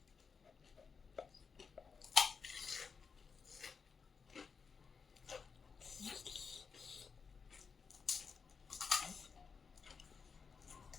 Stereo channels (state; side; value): quieter; right; 5.6 dB